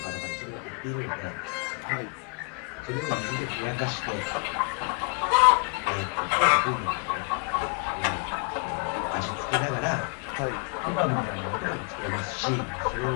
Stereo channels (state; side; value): quieter; right; 35.4 dB